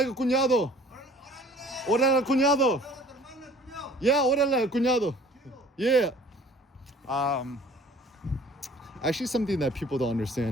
cuñado. Órale, cuñado. Yeah, órale, cuñado. Yeah. Actually, something that people don't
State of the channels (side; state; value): both; normal; correlation 0.51